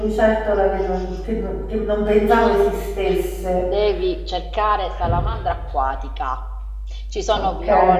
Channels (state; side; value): identical; both; correlation 1.00